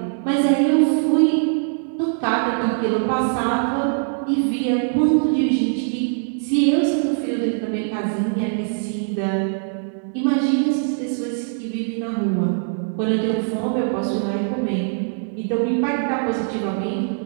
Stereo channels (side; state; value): left; silent; digital silence